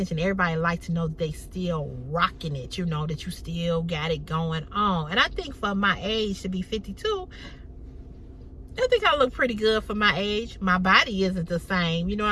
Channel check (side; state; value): both; identical; correlation 1.00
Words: Everybody likes to know that they still rocking it. You know, that you still got it going on. And I think for my age to be 52, I think I look pretty good for my age. My body isn't the same. You know